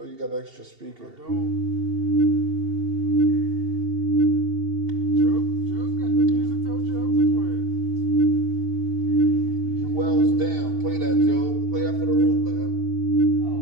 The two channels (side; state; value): left; late; 2.7 ms